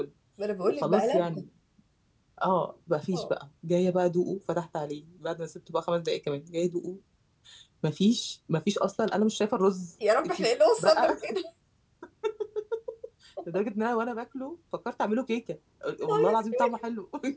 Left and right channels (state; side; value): identical; both; correlation 1.00